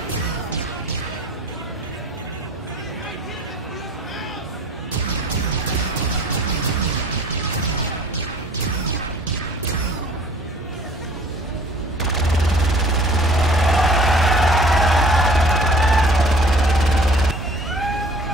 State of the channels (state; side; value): normal; both; correlation 0.50